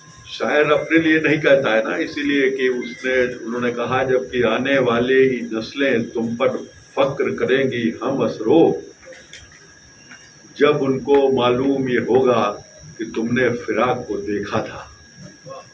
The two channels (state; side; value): identical; both; correlation 1.00